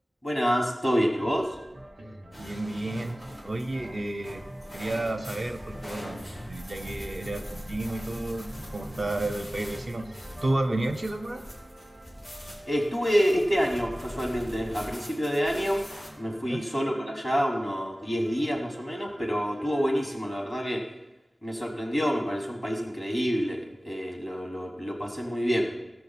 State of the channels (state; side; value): normal; both; correlation 0.97